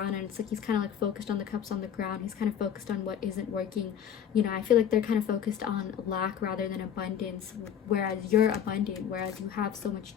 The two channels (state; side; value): quieter; right; 8.9 dB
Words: and it's like he's kind of like focused on the cups on the ground. He's kind of focused on what isn't working. You know, I feel like they're kind of focused on lack rather than abundance, whereas you're abundant, whereas you have so much